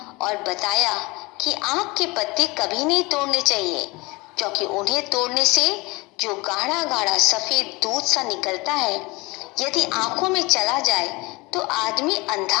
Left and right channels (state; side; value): quieter; right; 24.2 dB